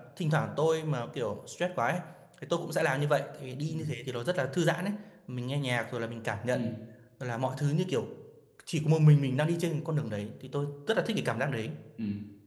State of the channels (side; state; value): both; identical; correlation 1.00